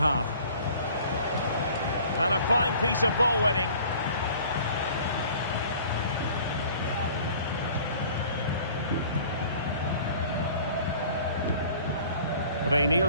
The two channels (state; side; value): inverted; both; correlation -0.49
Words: And a fine piece of ball winning.